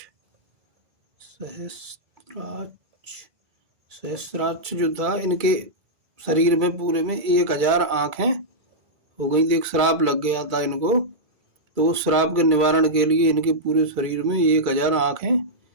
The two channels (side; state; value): left; late; 2.3 ms